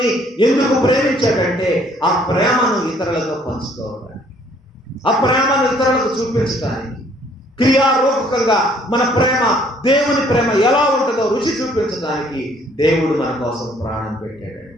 ఎందుకు ప్రేమించాడంటే ఆ ప్రేమను ఇతరులతో పంచుకోవడానికి, ఆ ప్రేమను ఇతరులకు చూపించడానికి, క్రియారూపకంగా మన ప్రేమ దేవుని ప్రేమ ఎలా ఉంటుందో రుచి చూపించడానికి దేవుడు మన కోసం ప్రాణం పెట్టాడండి.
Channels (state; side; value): normal; both; correlation 0.62